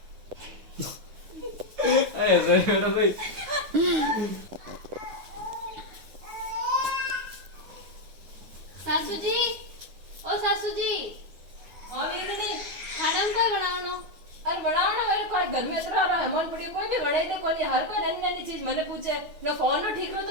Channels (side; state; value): left; late; 9.3 ms